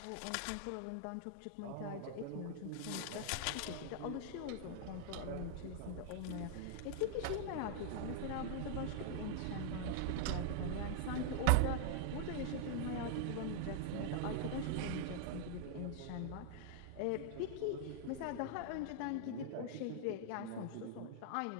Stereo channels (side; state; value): both; different; correlation -0.01